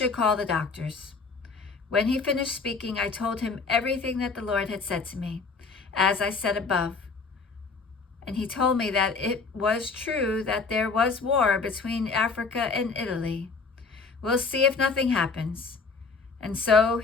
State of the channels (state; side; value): quieter; right; 4.5 dB